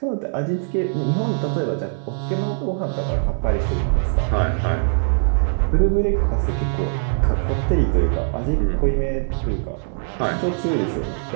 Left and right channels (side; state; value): left; silent; digital silence